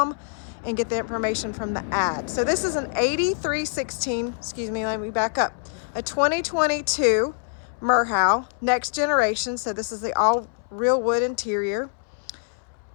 and get the information from the ad. So this is an 8316, excuse me, let me back up. A 2022 Merhow Next Generation, so this is the all real wood interior.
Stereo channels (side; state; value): right; silent; 62 dB below the other